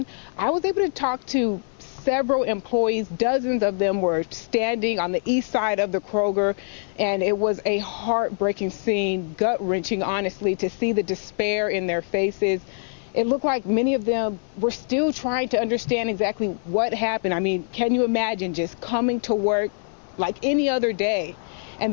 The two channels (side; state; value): right; silent; 56 dB below the other